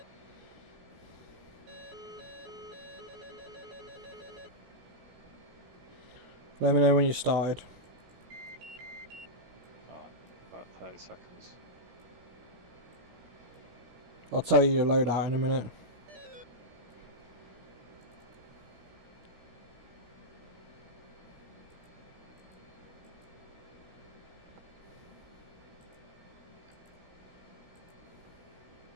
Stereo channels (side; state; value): left; late; 17 ms